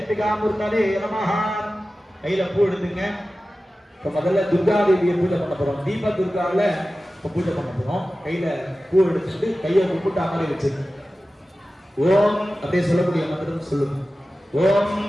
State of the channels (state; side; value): normal; both; correlation 0.95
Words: மூர்த்ததே நமஹ. கையில பூ எடுத்துங்க. இப்ப முதல்ல துர்கா தேவியை பூஜை பண்ண போறோம். தீப துர்கால இப்ப பூஜை பண்ண போறோம். கையில பூ எடுத்துட்டு கையை கும்பிட்டு அமரை வச்சுங்க. ஓம் அப்படியே சொல்லக்கூடிய மந்திரம் சொல்லுங்க. ஓம்